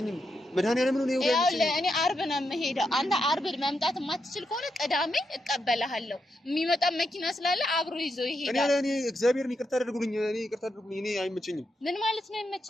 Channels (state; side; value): normal; both; correlation 0.83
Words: መድኃኒዓለም ነው እሁድ አይመቸኝም። እኔ ዓርብ ነው የምሄደው። አንተ ዓርብ መምጣት የማትችል ከሆነ ቅዳሜ እቀበልሃለሁ። የሚመጣ መኪና ስላለ አብሮ ይዞ ይሄዳል። እኔ እግዚአብሔርን ይቅርታ አድርጉልኝ። እኔ አይመቸኝም። ምን ማለት ነው